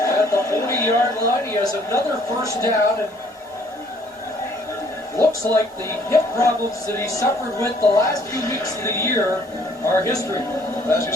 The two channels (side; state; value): both; normal; correlation 0.61